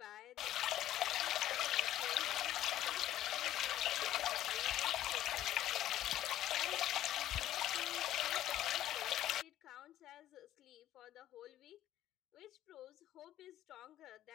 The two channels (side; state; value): right; quieter; 13.0 dB